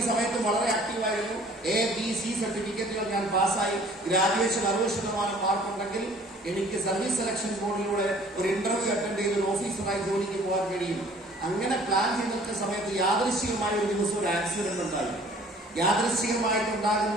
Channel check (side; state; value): both; normal; correlation 0.53